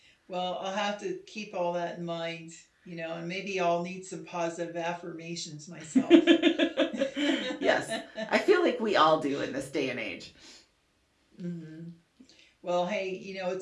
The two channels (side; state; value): both; identical; correlation 1.00